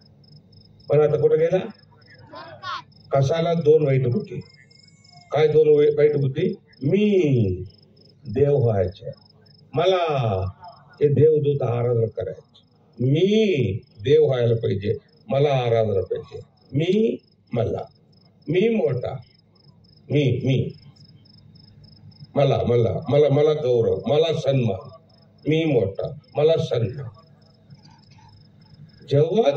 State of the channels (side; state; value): both; identical; correlation 1.00